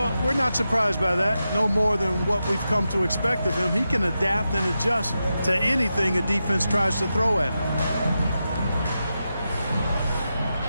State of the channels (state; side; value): inverted; both; correlation -0.89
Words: we're not surprised by that. No more than what we've come to expect of him. He can adapt and adjust to anything a defense tries to throw at him.